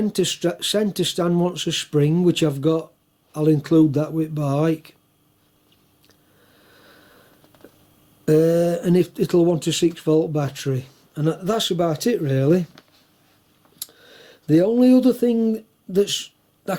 stand wants a spring, which I've got. I'll include that with bike. And it'll want a 6-volt battery, and that's about it really. The only other thing I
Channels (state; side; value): identical; both; correlation 1.00